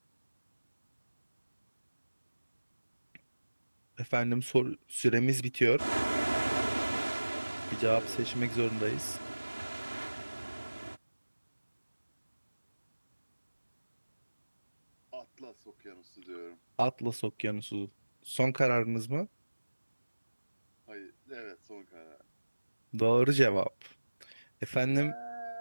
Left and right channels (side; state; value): both; inverted; correlation -1.00